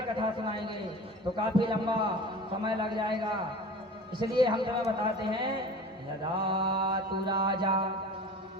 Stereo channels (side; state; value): both; normal; correlation 0.38